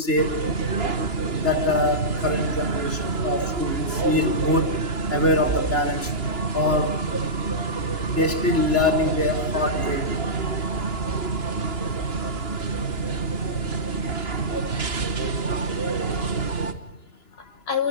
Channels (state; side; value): late; right; 2.9 ms